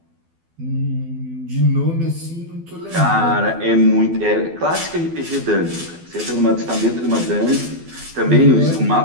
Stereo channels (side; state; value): left; late; 12 ms